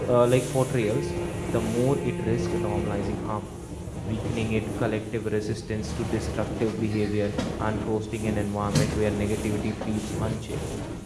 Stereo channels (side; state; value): both; identical; correlation 1.00